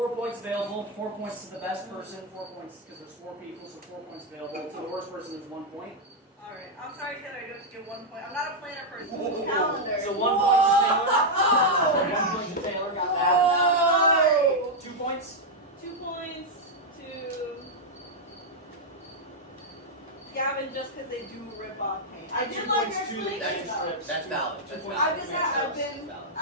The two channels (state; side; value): normal; both; correlation -0.02